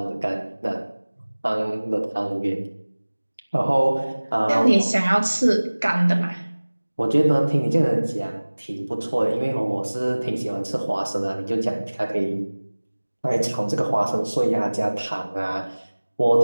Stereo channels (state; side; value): inverted; both; correlation -1.00